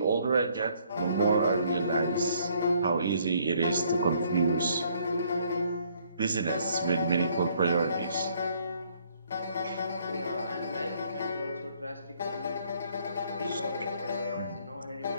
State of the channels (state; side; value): inverted; both; correlation -0.65